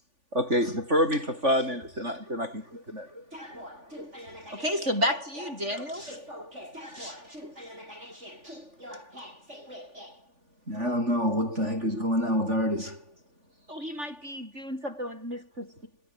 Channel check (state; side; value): late; left; 3.5 ms